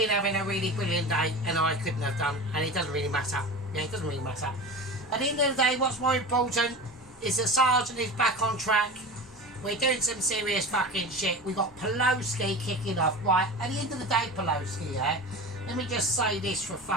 having a really brilliant day and I couldn't have done, and it doesn't really matter. Yeah, it doesn't really matter. At the end of the day, what's more important is that Sergeant is back on track. We're doing some serious fucking shit. We got Pelosi kicking off. Right, at the end of the day, Pelosi, yeah, let me just say this for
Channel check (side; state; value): both; normal; correlation 0.31